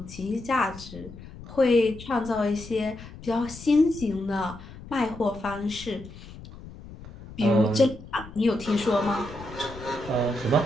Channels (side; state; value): left; noise; rumble, 16 dB below the sound